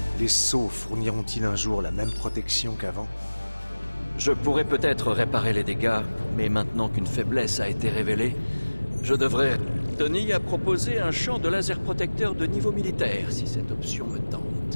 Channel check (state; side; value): inverted; both; correlation -1.00